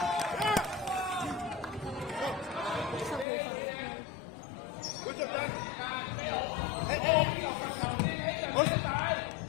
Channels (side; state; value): right; drops out; at 3.2 s